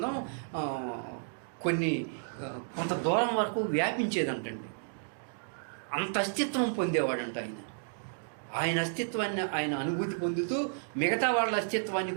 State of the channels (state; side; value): silent; left; digital silence